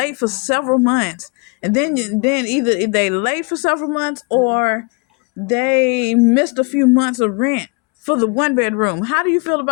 for several months. And then either they late for several months or they missed a few months of rent for the one bedroom. How do you feel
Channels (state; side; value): quieter; right; 33.1 dB